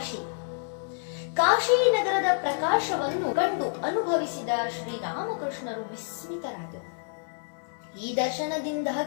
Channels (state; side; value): silent; right; 59 dB below the other